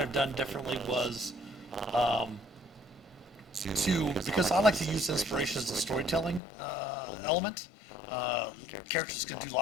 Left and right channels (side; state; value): right; drops out; at 6.4 s